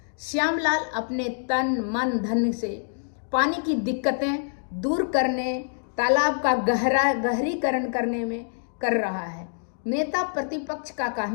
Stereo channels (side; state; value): right; silent; digital silence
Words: श्यामलाल अपने तन मन धन से पानी की दिक्कतें दूर करने, तालाब का गहरीकरण करने में कर रहा है। नेता प्रतिपक्ष का